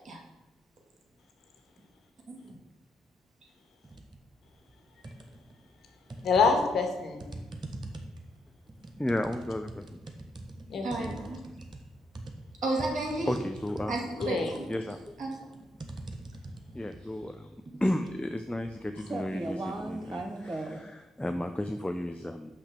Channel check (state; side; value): normal; both; correlation 0.79